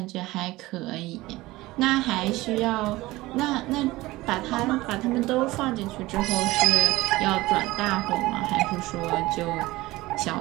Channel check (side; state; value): left; quieter; 19.1 dB